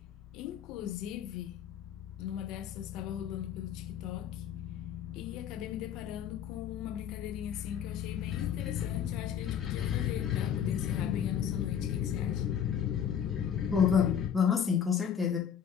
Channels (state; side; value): quieter; right; 8.4 dB